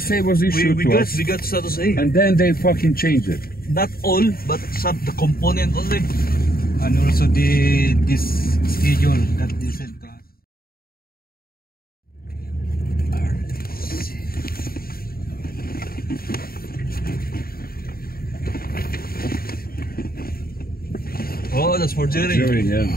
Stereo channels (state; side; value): late; right; 0.43 ms